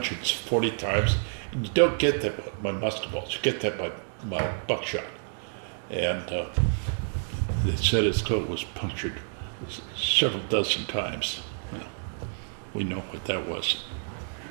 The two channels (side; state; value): left; silent; digital silence